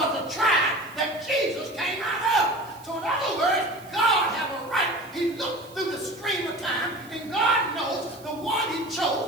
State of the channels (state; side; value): noise; right; hiss, 24 dB below the sound